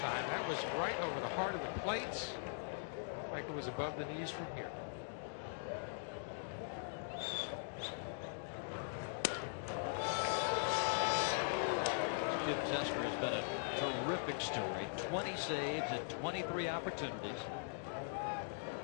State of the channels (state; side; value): silent; right; digital silence